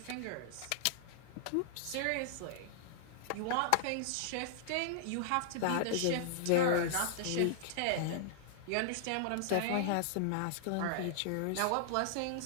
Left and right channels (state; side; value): different; both; correlation -0.01